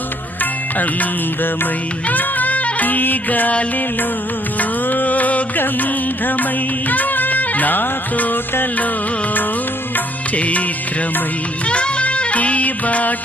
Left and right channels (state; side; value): normal; both; correlation 0.65